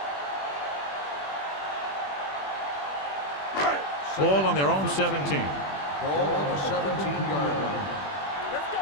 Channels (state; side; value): late; right; 21 ms